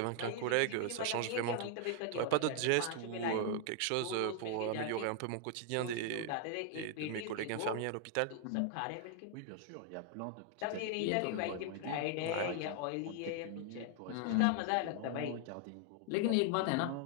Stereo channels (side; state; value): both; different; correlation 0.00